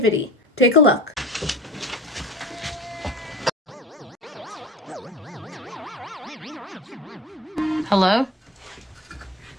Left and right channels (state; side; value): normal; both; correlation 0.41